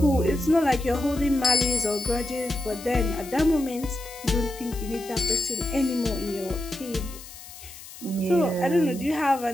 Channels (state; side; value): noise; left; hiss, 16 dB below the sound